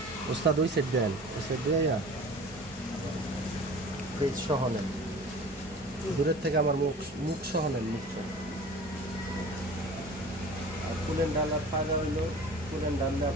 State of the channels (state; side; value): normal; both; correlation 0.41